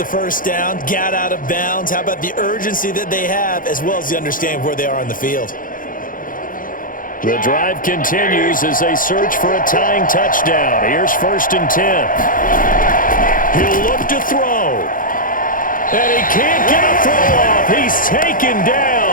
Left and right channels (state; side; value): late; right; 0.40 ms